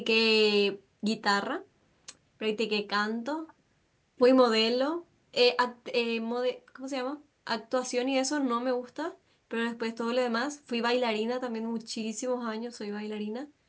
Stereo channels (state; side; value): identical; both; correlation 1.00